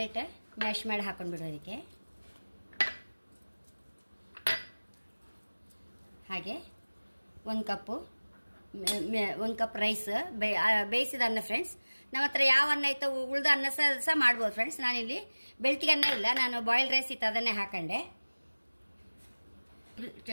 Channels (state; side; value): inverted; both; correlation -1.00